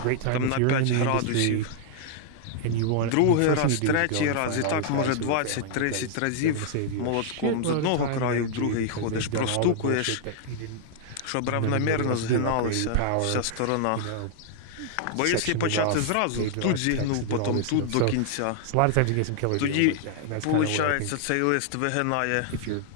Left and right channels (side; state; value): both; different; correlation -0.01